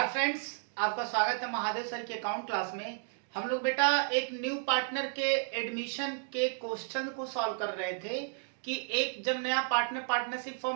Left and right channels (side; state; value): left; silent; digital silence